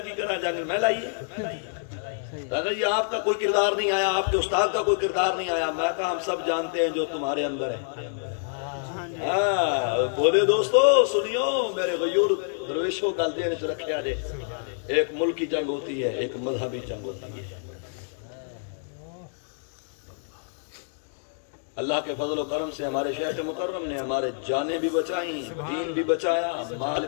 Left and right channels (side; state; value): right; silent; digital silence